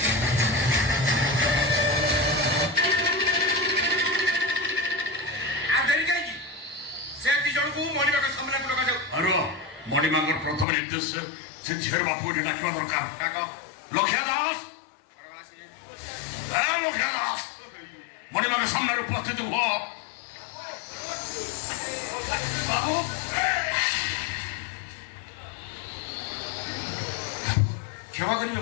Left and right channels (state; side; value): drops out; right; at 10.7 s